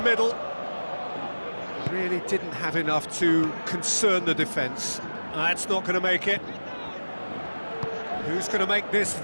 Really didn't have enough to concern the defence. That's not going to make it. Who's going to make this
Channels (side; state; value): both; inverted; correlation -1.00